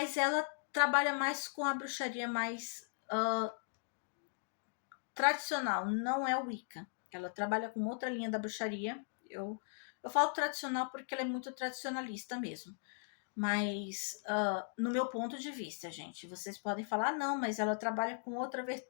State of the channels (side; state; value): right; silent; digital silence